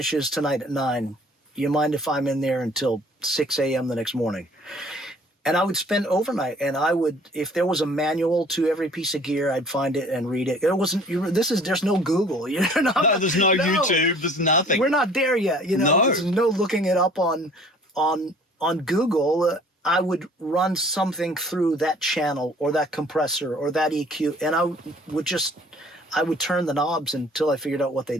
tonight at 9, do you mind if I'm in there until 6 a.m. the next morning? And I would spend overnight, and if there was a manual to every piece of gear, I'd find it and read it. There's no Google. There's no YouTube. There's nothing. We're not there yet. You know, there's no looking it up on Google. I would run something through that channel or that compressor or that EQ, and I would turn the knobs until I figured out what they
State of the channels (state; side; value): normal; both; correlation 0.53